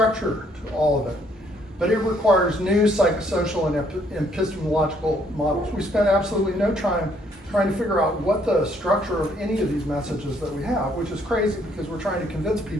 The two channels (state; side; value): normal; both; correlation 0.67